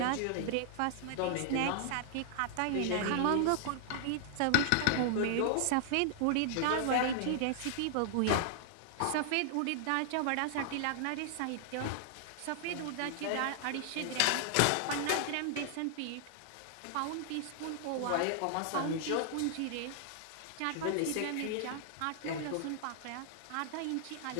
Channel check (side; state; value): both; different; correlation -0.01